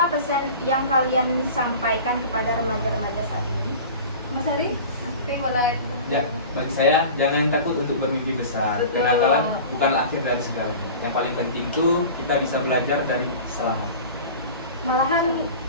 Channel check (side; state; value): both; inverted; correlation -0.38